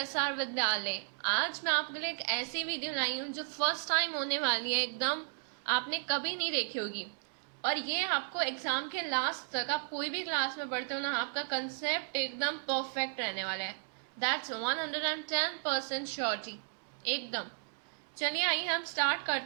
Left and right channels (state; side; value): silent; left; digital silence